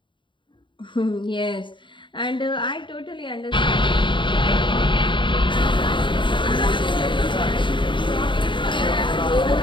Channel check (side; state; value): right; late; 0.23 ms